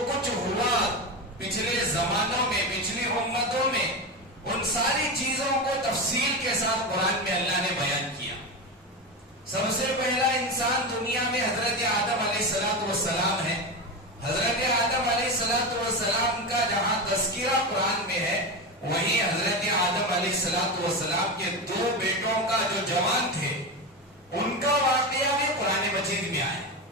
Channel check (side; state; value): both; normal; correlation 0.18